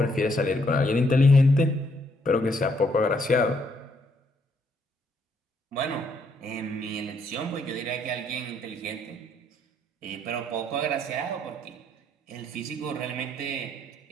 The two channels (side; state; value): both; normal; correlation 0.71